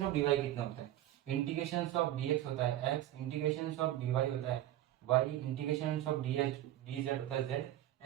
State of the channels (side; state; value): left; quieter; 13.5 dB